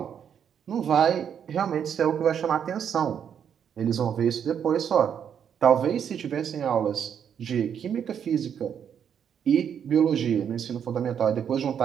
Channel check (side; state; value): left; quieter; 8.2 dB